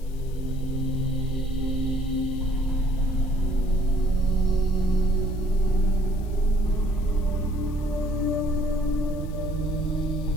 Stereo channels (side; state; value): left; noise; hiss, 26 dB below the sound